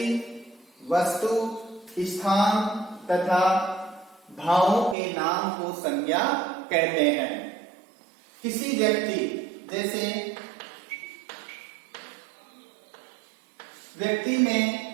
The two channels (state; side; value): drops out; left; at 5.0 s